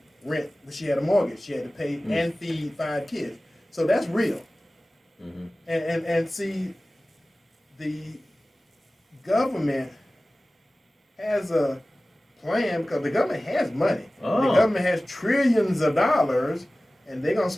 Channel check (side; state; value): both; normal; correlation 0.97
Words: rent, but she had a mortgage. She had to pay and feed 5 kids. So that's real. And see, the government has a plan because the government has money. The government has trillions of dollars, and they're gonna